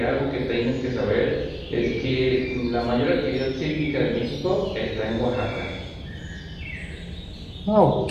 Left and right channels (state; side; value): identical; both; correlation 1.00